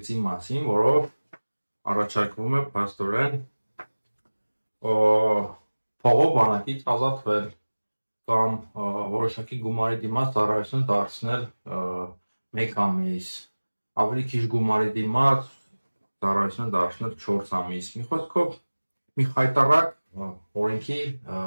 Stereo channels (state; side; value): inverted; both; correlation -1.00